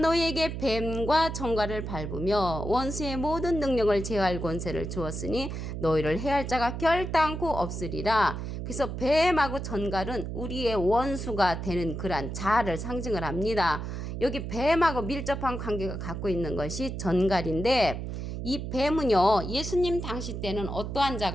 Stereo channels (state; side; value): noise; right; hum, 5 dB below the sound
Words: 뱀과 전갈을 밟으며 원수의 모든 능력을 제어할 권세를 주었으니 너희를 해할 자가 결단코 없으리라. 그래서 뱀하고 전갈은 우리의 원수가 되는 그러한 자아를 상징을 합니다. 여기 뱀하고 밀접한 관계가 갖고 있는 것이 전갈인데 이 뱀은요 예수님 당시 때는 어떠한